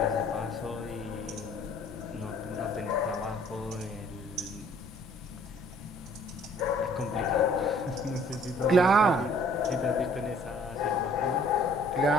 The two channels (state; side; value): normal; both; correlation 0.57